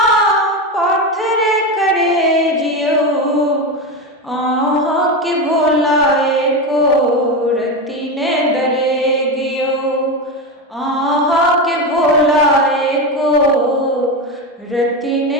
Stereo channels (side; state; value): both; normal; correlation 0.17